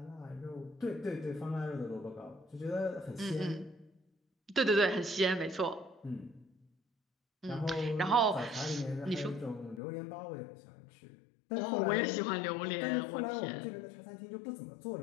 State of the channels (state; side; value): drops out; right; at 9.8 s